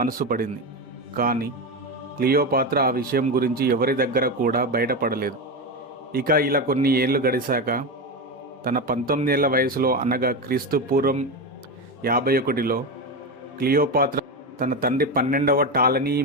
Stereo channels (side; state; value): both; normal; correlation 0.16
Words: పడింది. కానీ క్లియోపాత్ర ఆ విషయం గురించి ఎవరి దగ్గర కూడా బయటపడలేదు. ఇక ఇలా కొన్ని ఏళ్ళు గడిచాక తన 19 ఏళ్ల వయసులో అనగా క్రీస్తు పూర్వం 51లో క్లియోపాత్ర తన తండ్రి 12వ టాలనీ